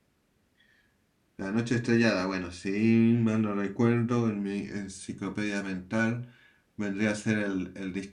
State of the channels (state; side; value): identical; both; correlation 1.00